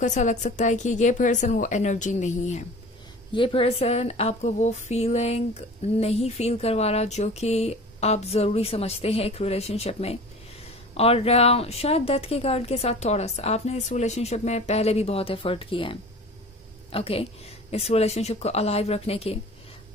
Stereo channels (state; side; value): normal; both; correlation 0.40